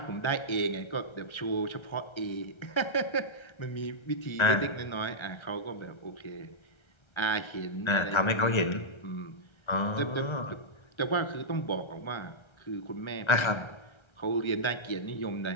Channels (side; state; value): right; late; 1.3 ms